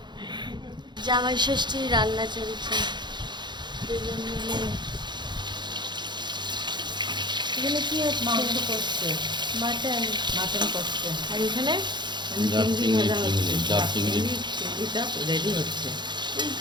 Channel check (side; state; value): left; late; 0.21 ms